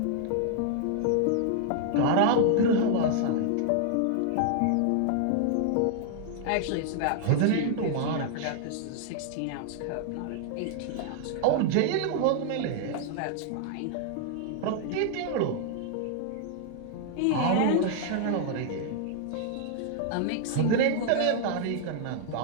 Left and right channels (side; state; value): both; different; correlation 0.00